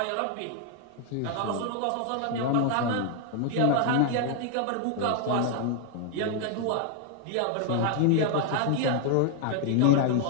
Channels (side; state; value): both; different; correlation 0.00